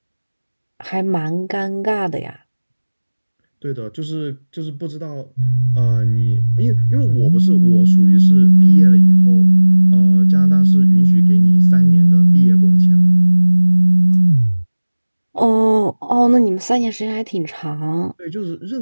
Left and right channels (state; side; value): inverted; both; correlation -1.00